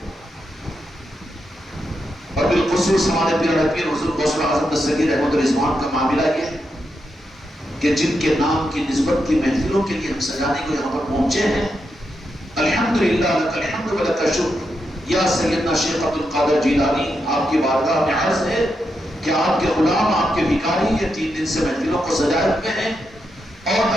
اور بالخصوص ہمارے پیارے پیر حضور غوث اعظم دستگیر احمد رضوان کا معاملہ یہ کہ جن کے نام کی نسبت کی محفلوں کے لیے ہم سجانے کو یہاں پر پہنچے ہیں، الحمدللہ لک الحمد و لک الشکر، یا سیدنا شیخ عبد القادر جیلانی، آپ کی بارگاہ میں عرض ہے کہ آپ کے غلام، آپ کے بھکاری یہ 3 دن سے محفلوں کو سجائے ہوئے ہیں، اور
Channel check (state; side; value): normal; both; correlation 0.84